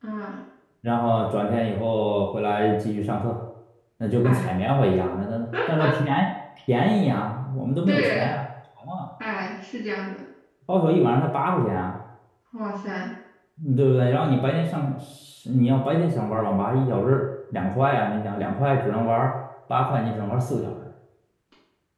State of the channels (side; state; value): both; identical; correlation 1.00